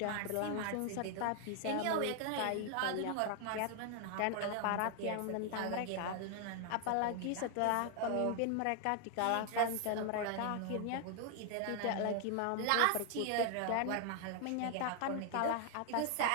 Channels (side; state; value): both; different; correlation 0.00